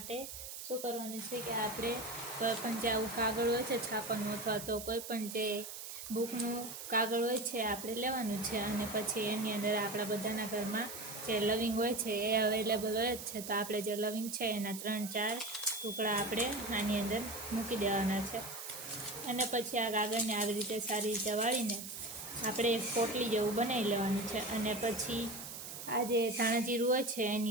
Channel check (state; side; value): noise; right; hiss, 9 dB below the sound